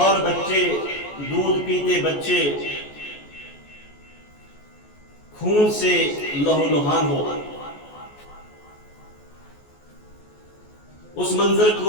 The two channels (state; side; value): late; right; 14 ms